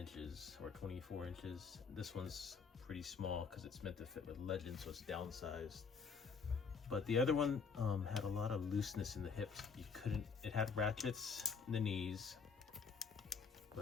or 24 inches. This one's pretty small because it's meant to fit with Legend, so it's downsized. But the other one had a lot of looseness in the hips. It had ratchets in the knees,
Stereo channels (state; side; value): quieter; right; 5.5 dB